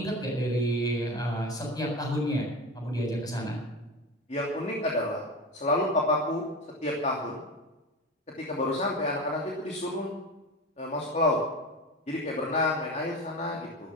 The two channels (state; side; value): normal; both; correlation 0.26